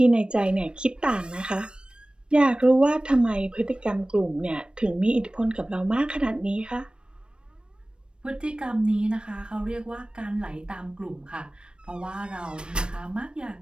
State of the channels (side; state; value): left; late; 0.055 ms